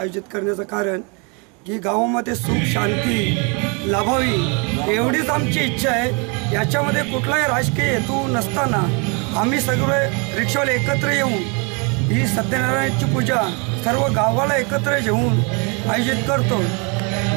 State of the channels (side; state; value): left; quieter; 33.2 dB